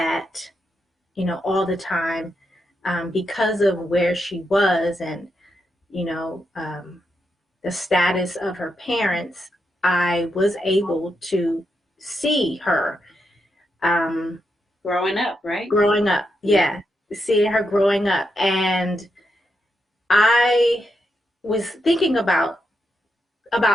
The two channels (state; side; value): normal; both; correlation 0.83